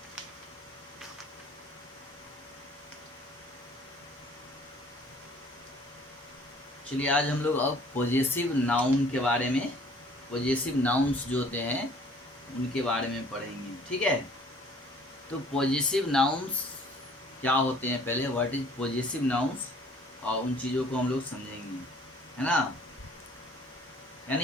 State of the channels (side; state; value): both; normal; correlation 0.55